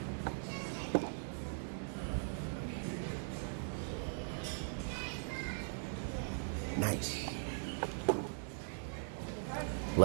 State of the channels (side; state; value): left; silent; digital silence